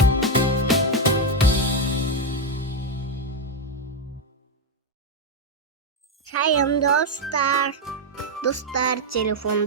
Шайым достар. Достар,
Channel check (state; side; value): normal; both; correlation 0.05